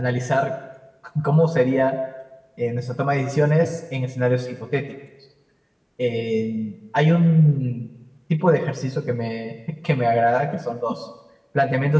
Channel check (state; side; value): identical; both; correlation 1.00